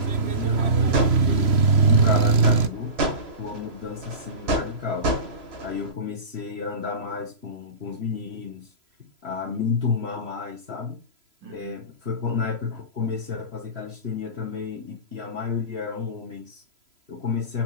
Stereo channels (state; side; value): late; left; 3.0 ms